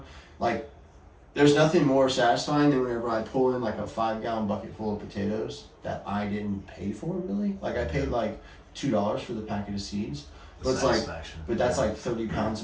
like there's nothing more satisfying than whenever I pull in like a 5-gallon bucket full of potatoes that I didn't pay for really. Like I paid like $2 for the packet of seeds, but it's like, but that's like 30 pounds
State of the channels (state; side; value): identical; both; correlation 1.00